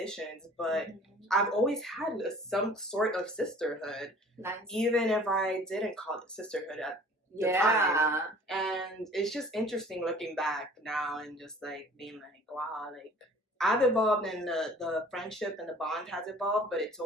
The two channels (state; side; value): normal; both; correlation 0.49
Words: but I've always had some sort of sisterhood. Nice. Even if I didn't call it sisterhood at the time. And it's just interesting looking back now and just like being like, wow, like I've evolved and the friendship and the bond has evolved, but it's